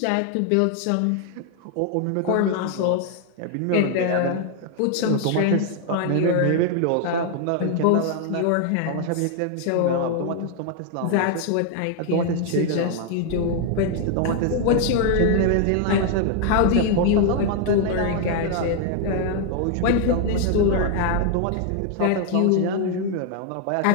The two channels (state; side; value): different; both; correlation 0.00